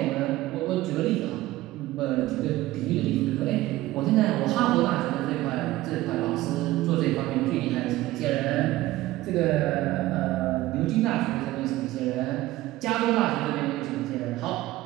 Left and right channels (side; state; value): left; quieter; 16.9 dB